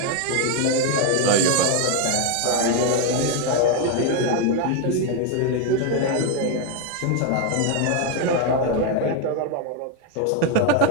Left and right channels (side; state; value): both; different; correlation 0.01